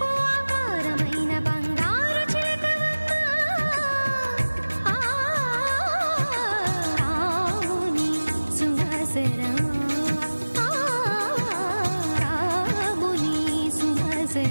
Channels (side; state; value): both; inverted; correlation -1.00